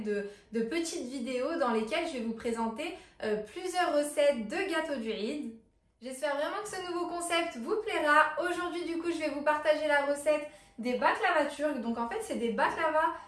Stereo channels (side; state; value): both; identical; correlation 1.00